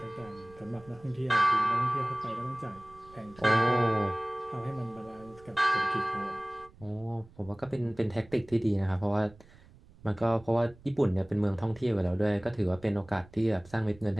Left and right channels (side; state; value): right; noise; rumble, 24 dB below the sound